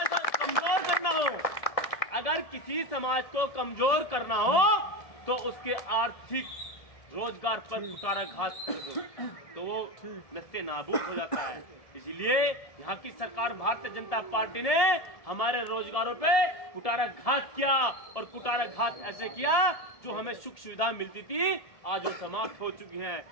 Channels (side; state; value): right; late; 1.7 ms